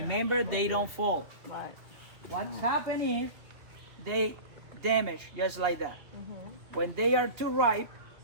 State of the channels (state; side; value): late; left; 2.4 ms